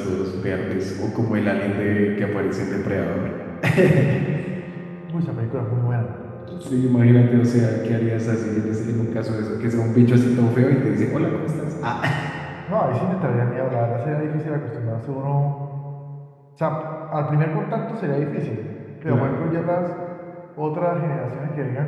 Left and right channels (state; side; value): identical; both; correlation 1.00